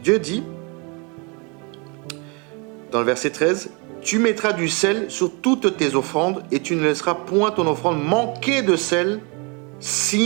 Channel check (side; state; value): left; quieter; 31.8 dB